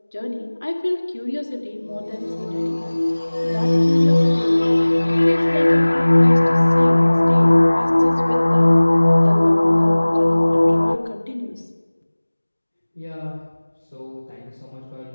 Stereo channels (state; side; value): inverted; both; correlation -1.00